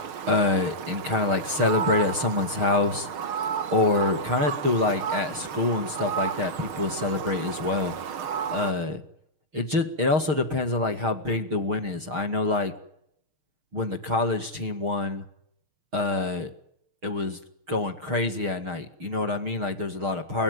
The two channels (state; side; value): late; left; 6.5 ms